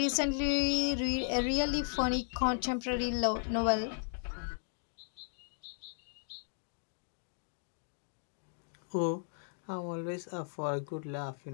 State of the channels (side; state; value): right; silent; digital silence